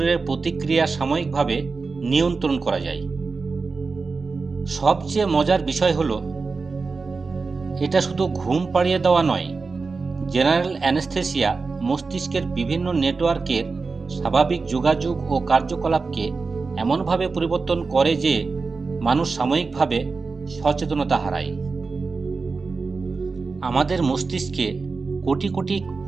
প্রতিক্রিয়া সাময়িকভাবে নিয়ন্ত্রণ করা যায়। সবচেয়ে মজার বিষয় হলো, এটা শুধু ঘুম পাড়িয়ে দেওয়া নয়। জেনারেল অ্যানেস্থেসিয়া মস্তিষ্কের বিভিন্ন নেটওয়ার্কের স্বাভাবিক যোগাযোগ ও কার্যকলাপকে এমনভাবে পরিবর্তন করে যে মানুষ সাময়িকভাবে সচেতনতা হারায়। আমাদের মস্তিষ্কে কোটি কোটি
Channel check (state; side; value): quieter; left; 4.3 dB